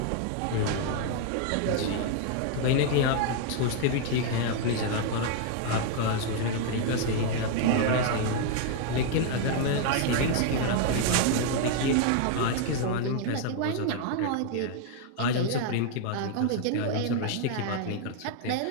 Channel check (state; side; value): different; both; correlation 0.00